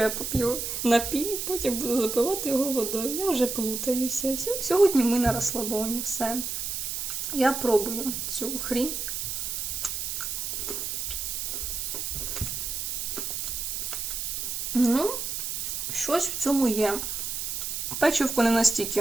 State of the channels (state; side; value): noise; right; hiss, 3 dB below the sound